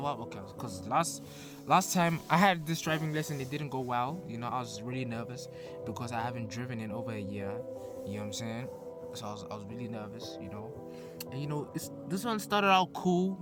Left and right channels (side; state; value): both; identical; correlation 1.00